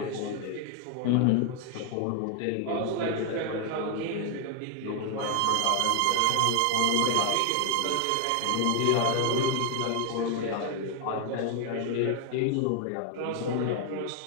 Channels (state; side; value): different; both; correlation 0.00